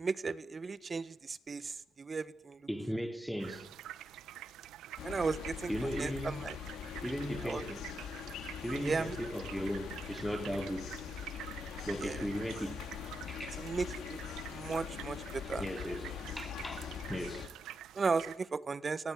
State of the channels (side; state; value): both; normal; correlation 0.85